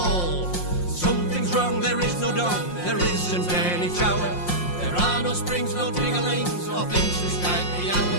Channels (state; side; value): late; right; 5.6 ms